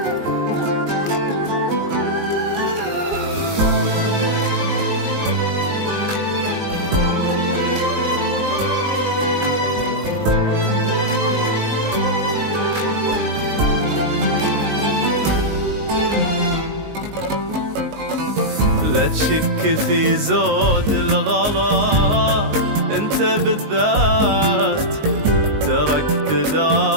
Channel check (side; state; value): left; late; 19 ms